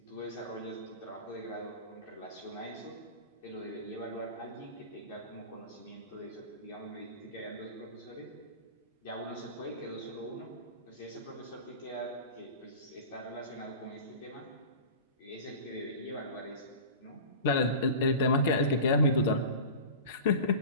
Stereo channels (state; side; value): inverted; both; correlation -0.34